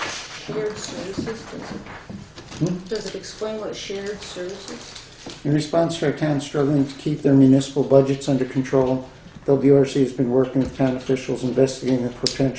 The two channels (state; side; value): identical; both; correlation 1.00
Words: shared services, does it explain what shared services? In response to our town struggling to keep their municipal budgets under control, WRC has been working with town officials investigating the